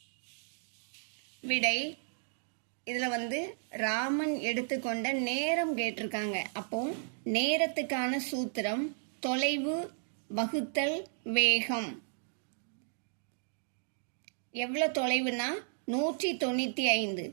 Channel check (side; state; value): left; silent; digital silence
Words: விடை: இதுல ராமன் எடுத்துக்கொண்ட நேரம் கேட்டிருக்காங்க. அப்போ நேரத்துக்கான சூத்திரம் தொலைவு வகுத்தல் வேகம். எவ்வளவு தொலைவுனா 195.